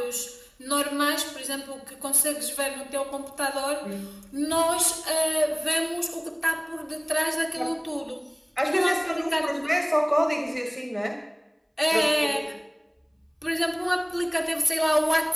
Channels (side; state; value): both; identical; correlation 1.00